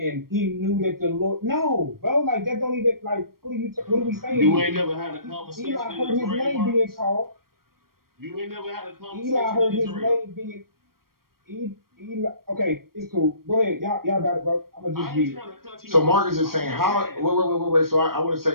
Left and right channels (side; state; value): left; late; 0.93 ms